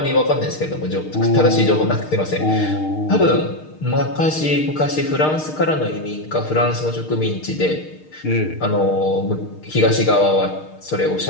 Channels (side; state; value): right; late; 6.5 ms